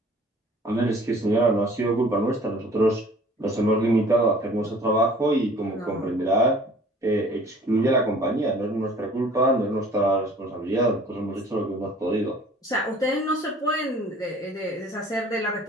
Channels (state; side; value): normal; both; correlation 0.50